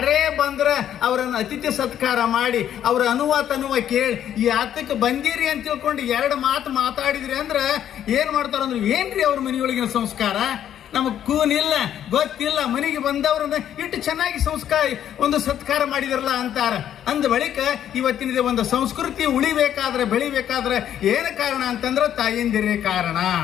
ಬಂದ್ರೆ ಅವರನ್ನು ಅತಿಥಿ ಸತ್ಕಾರ ಮಾಡಿ ಅವ್ರ ಅನುವ ಕೇಳಿ ಯಾತಕ್ಕೆ ಬಂದಿರಿ ಅಂತ ತಿಳ್ಕೊಂಡು ಎರಡು ಮಾತು ಮಾತಾಡಿದ್ರಿ ಅಂದ್ರೆ ಏನ್ ಮಾಡ್ತಾರಂದ್ರೆ, ಏನ್ರಿ ಅವ್ರ ಮನೆಯೊಳಗಿನ ಸಂಸ್ಕಾರ, ನಮಗ್ ಕೂನಿಲ್ಲ, ಗೊತ್ತಿಲ್ಲ, ಮನೆಗೆ ಬಂದವ್ರನ್ನ ಇಟ್ಟು ಚೆನ್ನಾಗಿ ಒಂದು ಸತ್ಕಾರ ಮಾಡಿದ್ರಲ್ಲ ಅಂತಾರ. ಅಂದ ಬಳಿಕ ಇವತ್ತಿನ ಒಂದು ಸಂಸ್ಕೃತಿ ಉಳಿಬೇಕಾದ್ರೆ, ಬೆಳಿಬೇಕಾದ್ರೆ ಏನು ಕಾರಣ ಅಂತಂದ್ರೆ ತಾಯಂದಿರೇ ಕಾರಣ.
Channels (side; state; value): right; quieter; 10.4 dB